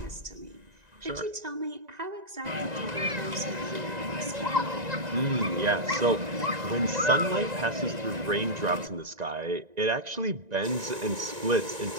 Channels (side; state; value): left; late; 1.9 ms